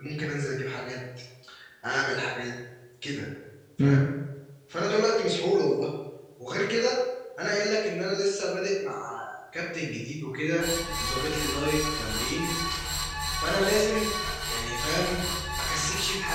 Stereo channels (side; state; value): both; identical; correlation 1.00